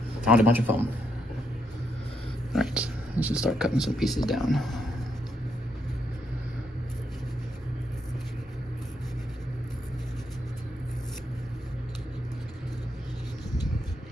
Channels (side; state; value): both; normal; correlation 0.78